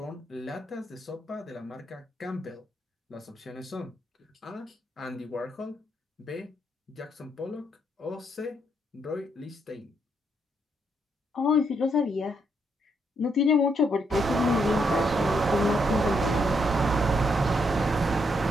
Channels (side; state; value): both; normal; correlation 0.76